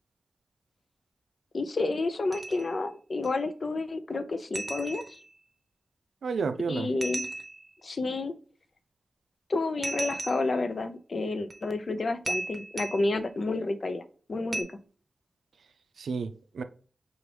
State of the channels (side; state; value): both; normal; correlation 0.91